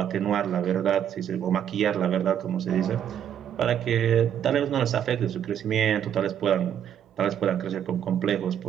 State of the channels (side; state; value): left; quieter; 9.5 dB